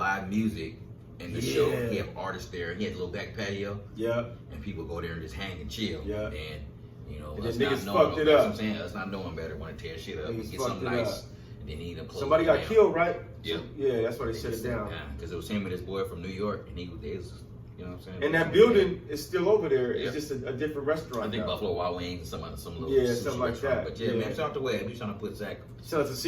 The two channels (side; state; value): both; identical; correlation 1.00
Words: music in the show. He had artists there. He had a little back patio. Yeah. And people go there and just hang and chill. Yeah. And you know, us not knowing, you know what I'm saying? Us not knowing better, want to tear shit up and get something nice. And then he ended up closing. Somebody got killed, right? Yeah. Yeah, that's why they shut it down. Because it was him and his boy from New York, and he was, you know what I'm saying? And that building is still over there. It's just a different restaurant. I think Buffalo Wild Wings, some little something like that. But yeah, man, shout out to Webb. He's trying to put Zach. Shout out to